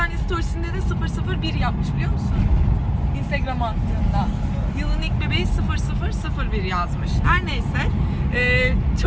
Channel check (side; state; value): both; identical; correlation 1.00